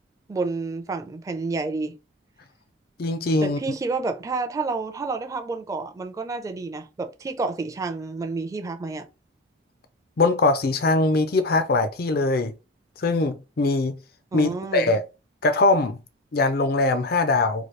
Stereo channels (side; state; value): both; normal; correlation 0.21